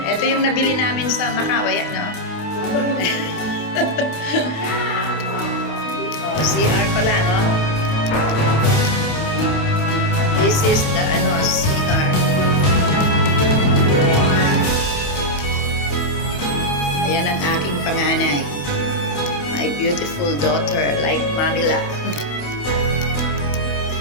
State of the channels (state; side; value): late; right; 28 ms